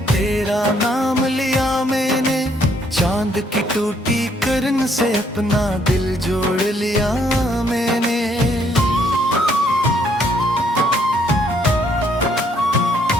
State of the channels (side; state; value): both; normal; correlation 0.68